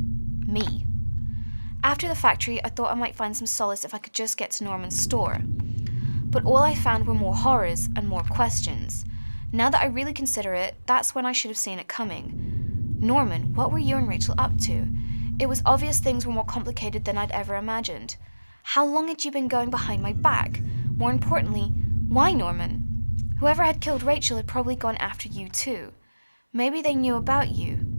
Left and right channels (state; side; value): inverted; both; correlation -1.00